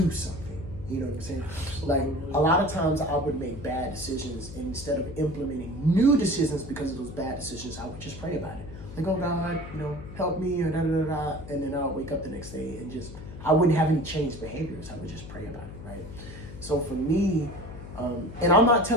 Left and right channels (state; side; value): noise; left; hum, 12 dB below the sound